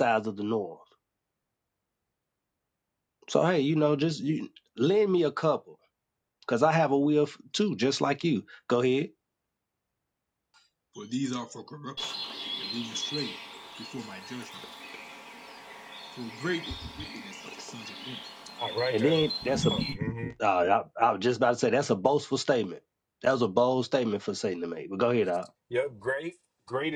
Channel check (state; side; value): identical; both; correlation 1.00